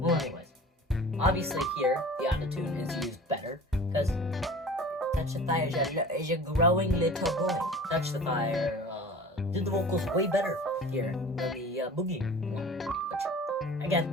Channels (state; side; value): normal; both; correlation 0.41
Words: anyways, obviously here the autotune is used better because Touch the Fire is a growing little boy. Touch the Fire did the vocals way better here than the Boogie one, which